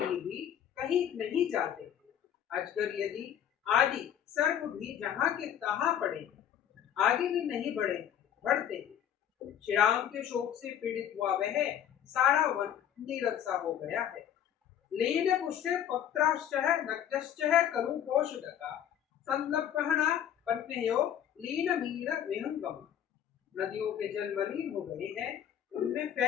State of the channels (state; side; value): quieter; right; 9.9 dB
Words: भी कहीं नहीं जाते। अजगर यदि आदि सर्प भी जहाँ के तहाँ पड़े आगे भी नहीं बढ़ते। श्री राम के शोक से पीड़ित हुआ वह सारा वन नीरव सा हो गया है। लीन पुष्टे पत्राश्चः नक्तश्चः करुपोषदका संलप्पहना पन्नेयो लीन मीन विहंगम। नदियों के जल मलिन हो गए हैं, उनमें